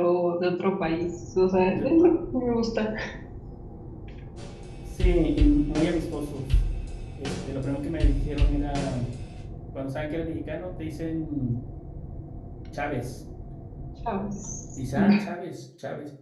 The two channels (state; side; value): identical; both; correlation 1.00